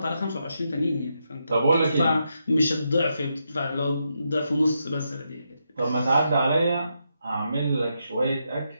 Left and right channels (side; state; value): both; inverted; correlation -0.83